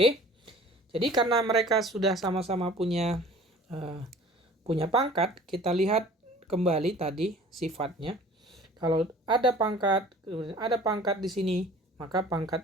Jadi karena mereka sudah sama-sama punya pangkat, kita lihat kembali tadi sifatnya. Kalau ada pangkat di sini, maka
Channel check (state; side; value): normal; both; correlation 0.47